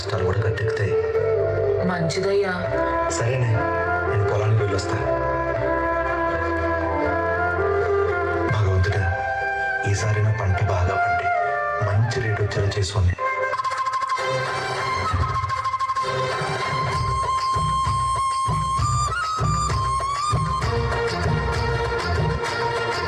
కూడా గట్టెక్కుతాయి. మంచిదయ్యా. సరేనే, నేను పొలానికి వెళ్ళొస్తా. భగవంతుడా, ఈసారి నా పంట బాగా పండి మంచి రేట్ వచ్చేలా చేసుకోండి.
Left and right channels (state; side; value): identical; both; correlation 1.00